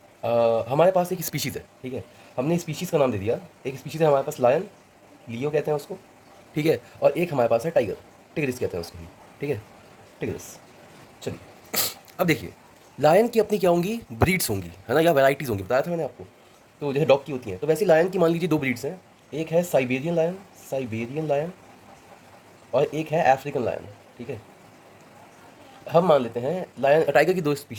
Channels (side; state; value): both; identical; correlation 1.00